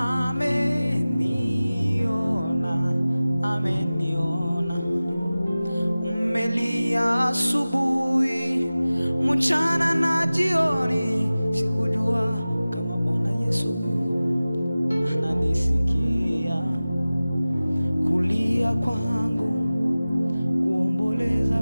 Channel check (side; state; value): both; inverted; correlation -0.97